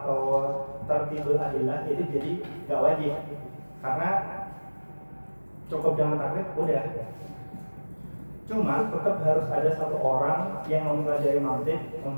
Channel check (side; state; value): both; inverted; correlation -1.00